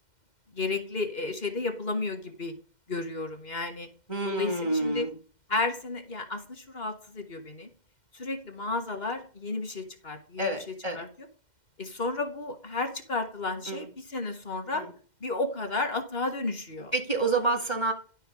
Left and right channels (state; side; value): late; right; 2.1 ms